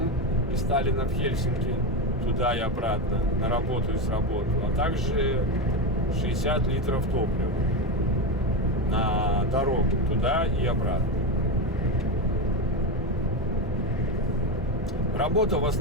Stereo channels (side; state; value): both; normal; correlation 0.15